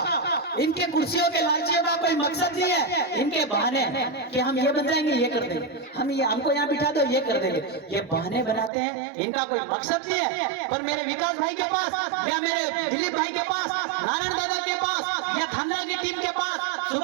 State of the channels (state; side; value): drops out; left; at 8.7 s